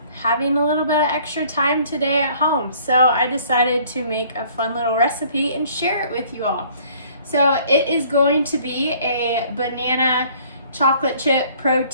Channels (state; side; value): inverted; both; correlation -0.56